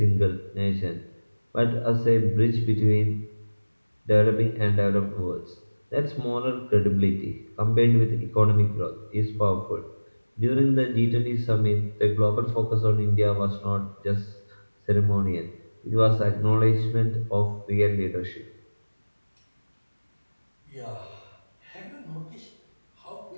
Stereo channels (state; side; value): inverted; both; correlation -1.00